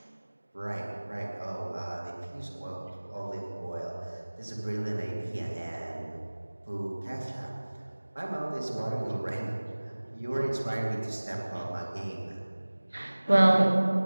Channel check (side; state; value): both; inverted; correlation -1.00